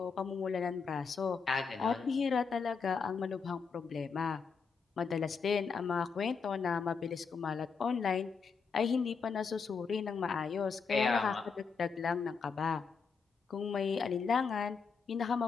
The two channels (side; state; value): right; quieter; 5.5 dB